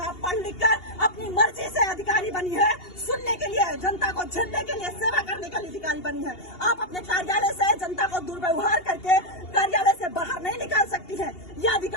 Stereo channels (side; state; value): right; late; 2.8 ms